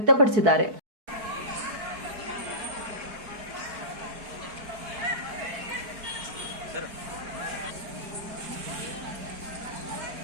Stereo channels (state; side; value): late; left; 4.6 ms